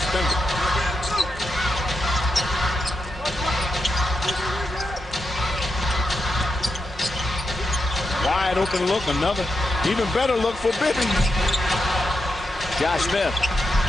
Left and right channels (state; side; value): normal; both; correlation 0.86